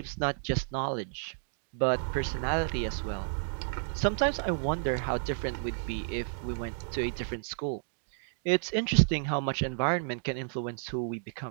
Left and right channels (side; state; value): left; silent; digital silence